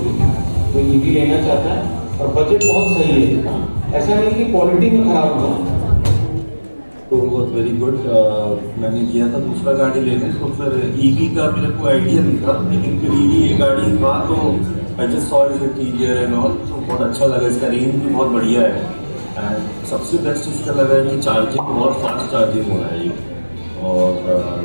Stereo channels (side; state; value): both; inverted; correlation -1.00